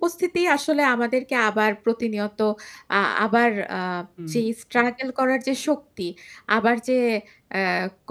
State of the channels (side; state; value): both; identical; correlation 1.00